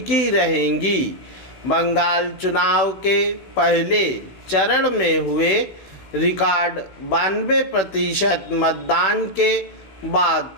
रहेंगी। बंगाल चुनाव के पहले चरण में हुए रिकॉर्ड 92% मतदान के बाद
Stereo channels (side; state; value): right; late; 16 ms